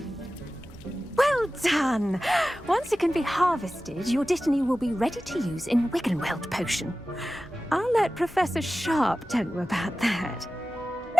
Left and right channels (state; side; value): normal; both; correlation 0.95